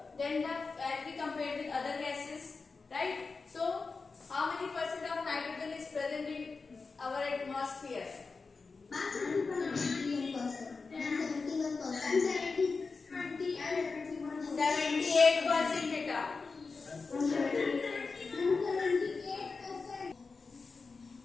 than the as we compare with other gases, right? So how many percent of nitrogen is present in our atmosphere? 78% beta.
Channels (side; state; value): right; quieter; 4.4 dB